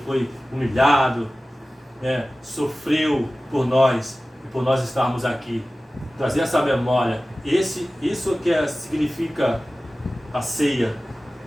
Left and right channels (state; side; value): normal; both; correlation 0.96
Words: foi humilhado, sofreu por nós, e por nós estarmos aqui. Trazer essa memória. Isso que significa a ceia.